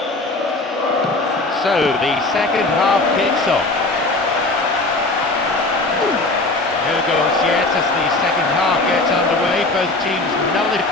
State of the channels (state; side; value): quieter; right; 3.0 dB